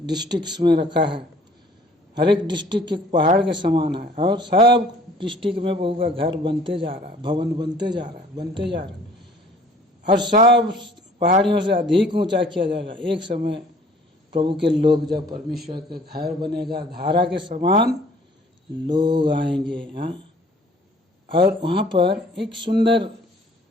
डिस्ट्रिक्ट्स में रखा है। हर एक डिस्ट्रिक्ट एक पहाड़ के समान है और सब डिस्ट्रिक्ट में प्रभु का घर बनते जा रहा है, भवन बनते जा रहा है और सब पहाड़ियों से अधिक ऊंचा किया जाएगा। एक समय प्रभु के लोग जब परमेश्वर के घर बनेगा, धारा के समान लोग आएंगे। हाँ, और वहाँ पर एक सुंदर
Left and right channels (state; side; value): normal; both; correlation 0.54